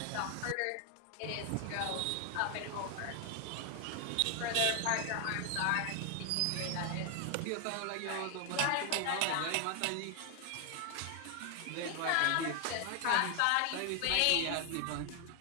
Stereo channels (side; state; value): both; different; correlation 0.00